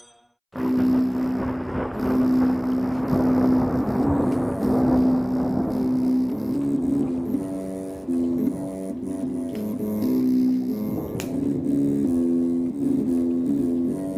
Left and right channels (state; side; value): identical; both; correlation 1.00